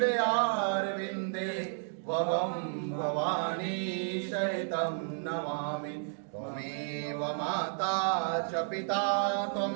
वहं भवानी सहितं नमामि। त्वमेव माता च पिता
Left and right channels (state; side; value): silent; left; digital silence